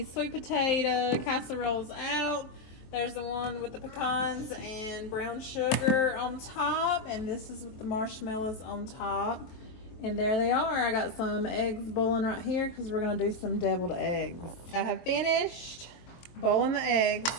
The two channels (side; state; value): right; late; 23 ms